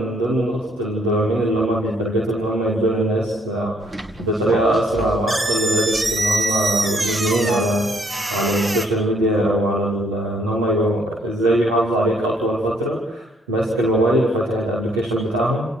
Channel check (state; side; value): normal; both; correlation 0.67